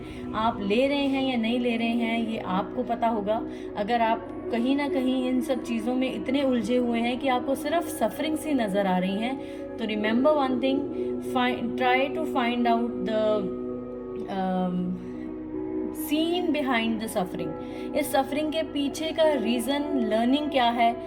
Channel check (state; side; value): identical; both; correlation 1.00